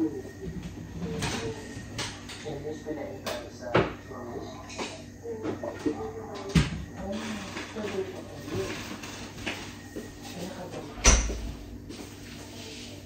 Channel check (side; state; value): both; identical; correlation 1.00